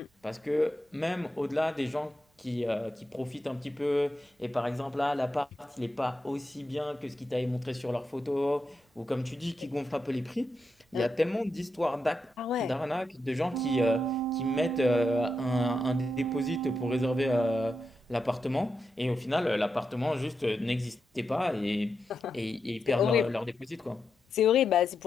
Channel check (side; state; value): both; normal; correlation 0.85